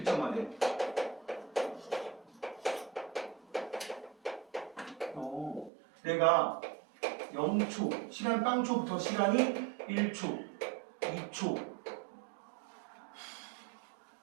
내가 0초, 시간 빵초부터 시간이 1초, 2초,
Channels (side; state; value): left; drops out; at 5.7 s